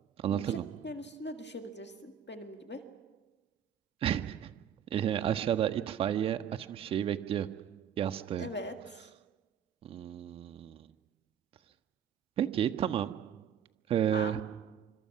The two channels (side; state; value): left; quieter; 8.9 dB